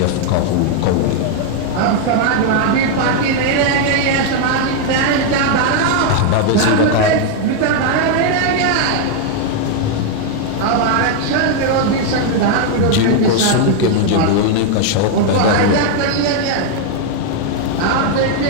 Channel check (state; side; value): different; both; correlation 0.00